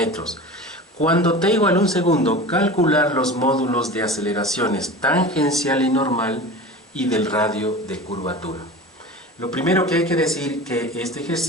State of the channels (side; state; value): both; normal; correlation 0.34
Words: Cuando t igual a un segundo, calcular los módulos de aceleraciones tangencial y normal y del radio de curvatura. Lo primero que hay que decir que este